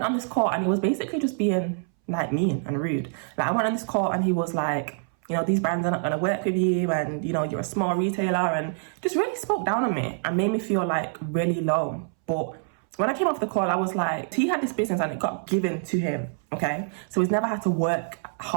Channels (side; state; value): left; silent; 61 dB below the other